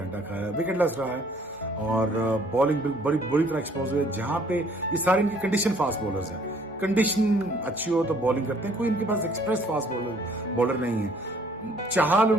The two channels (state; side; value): normal; both; correlation 0.60